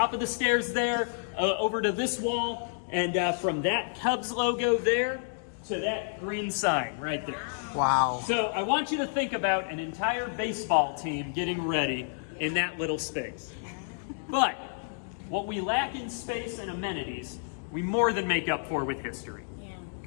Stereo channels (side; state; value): right; silent; digital silence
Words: of the stairs there over to this wall, and from that Cubs logo there to that green sign right there. Wow. So I want you to think about an entire baseball team getting ready in that little space. But what we lack in space and amenities, we more than make up for with history.